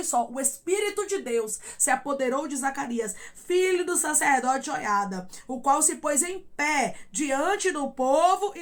só, o Espírito de Deus se apoderou de Zacarias, filho do sacerdote Joiada, o qual se pôs em pé diante do povo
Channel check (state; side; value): identical; both; correlation 1.00